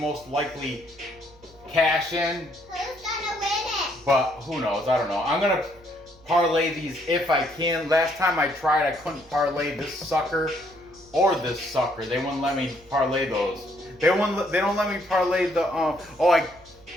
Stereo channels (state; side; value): noise; right; hum, 26 dB below the sound